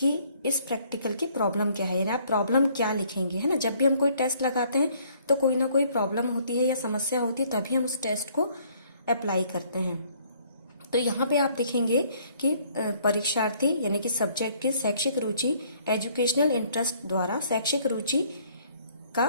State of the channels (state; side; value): inverted; both; correlation -0.62